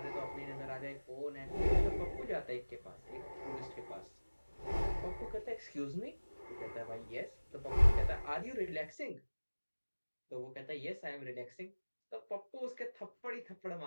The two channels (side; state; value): both; inverted; correlation -1.00